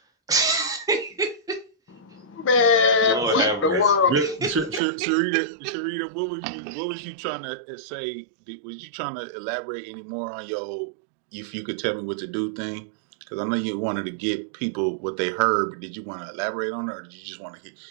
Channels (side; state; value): left; drops out; at 4.8 s